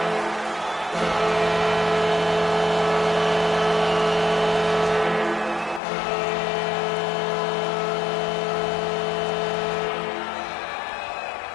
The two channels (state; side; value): drops out; right; at 5.8 s